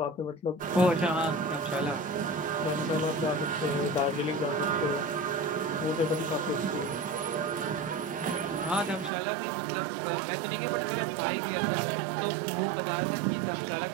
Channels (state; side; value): drops out; left; at 9.1 s